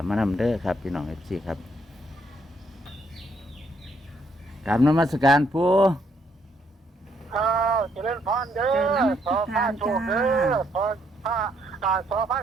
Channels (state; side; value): normal; both; correlation 0.71